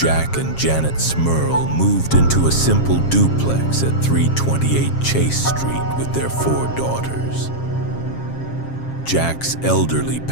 and Janet Smurl moved into a simple duplex at 328 Chase Street with their 4 daughters. Jack's elderly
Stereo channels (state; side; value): late; right; 7.4 ms